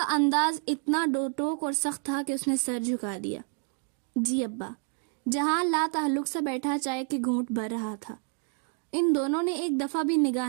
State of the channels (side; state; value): left; quieter; 39.0 dB